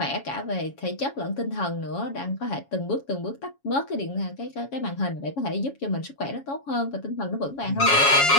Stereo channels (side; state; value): right; late; 7.2 ms